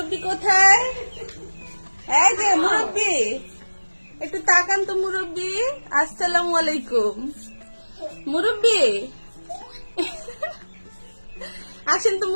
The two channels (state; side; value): inverted; both; correlation -1.00